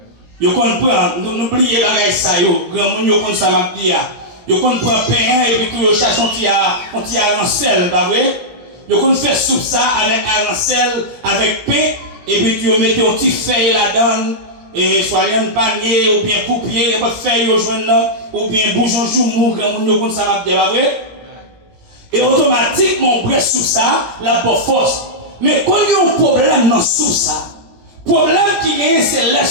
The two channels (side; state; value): left; late; 17 ms